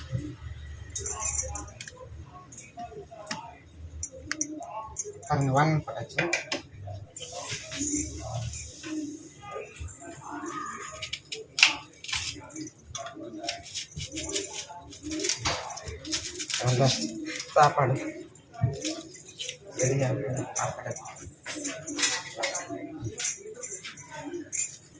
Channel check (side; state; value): both; identical; correlation 1.00